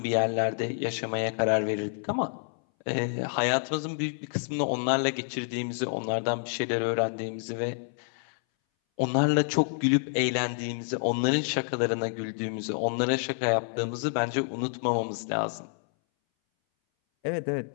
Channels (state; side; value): silent; right; 59 dB below the other